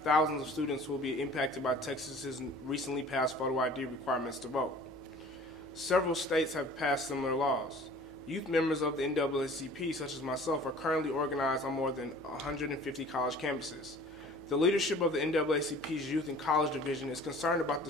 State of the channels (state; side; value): noise; left; hum, 26 dB below the sound